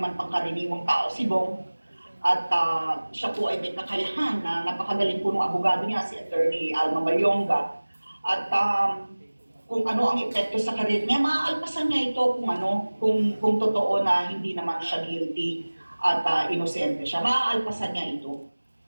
pangkaraniwang tao si Bong. At siya po ay may kakayahan na napakagaling po ng abogado niya, si Attorney Alma Mayonga. At kung ano ang epekto sa karir niya, maaalpasan niya ito kung totoo na hindi naman siya guilty at inosente siya. Maaalpasan niya ito.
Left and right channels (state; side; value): inverted; both; correlation -1.00